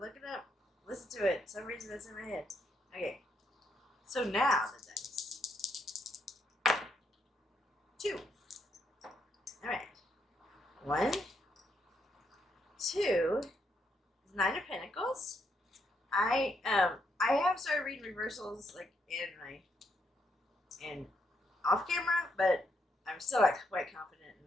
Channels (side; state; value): both; normal; correlation 0.77